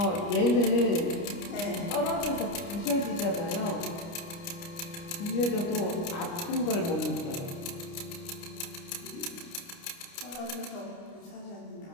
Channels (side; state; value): right; late; 29 ms